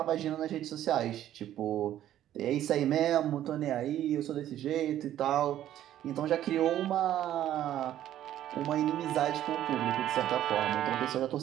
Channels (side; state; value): left; quieter; 12.1 dB